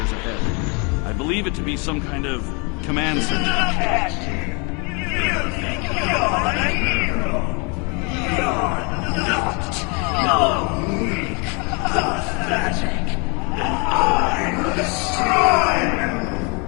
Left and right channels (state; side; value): quieter; right; 32.5 dB